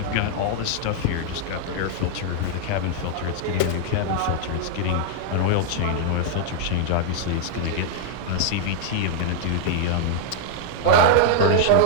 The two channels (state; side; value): different; both; correlation -0.01